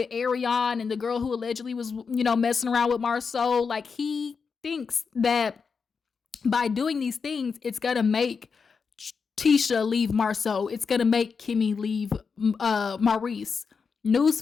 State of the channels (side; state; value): right; quieter; 5.5 dB